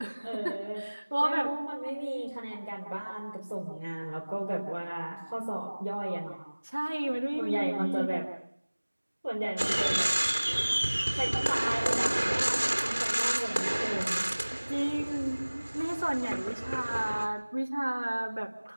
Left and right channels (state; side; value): inverted; both; correlation -1.00